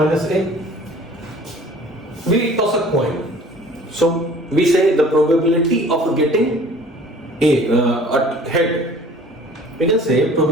A. We toss a coin. So we say the probability of getting a head. We can say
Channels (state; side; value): normal; both; correlation 0.49